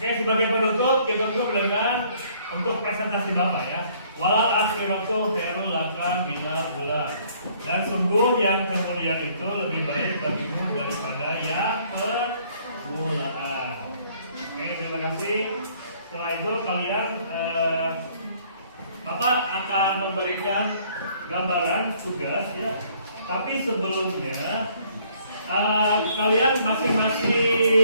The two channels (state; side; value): inverted; both; correlation -0.62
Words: sebagai penutup kita tutup dengan untuk presentasi Bapak ya. Walal akhiratu khairul laka minal ula. Dan sungguh yang kemudian itu lebih baik bagimu daripada yang permulaan. Oke, terima kasih. Setelah itu kalian Bapak akan memberikan gambaran tugas ya. Tapi sebelumnya kalian